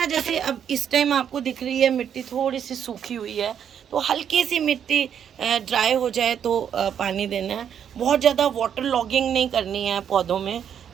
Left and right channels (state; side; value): quieter; left; 8.6 dB